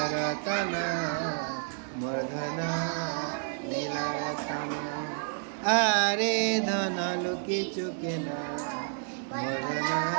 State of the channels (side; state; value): left; silent; 58 dB below the other